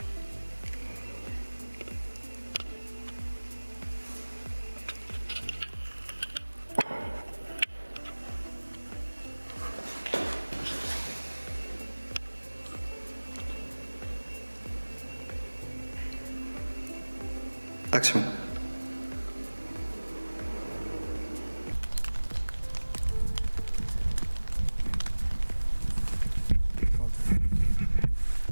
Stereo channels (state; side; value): inverted; both; correlation -1.00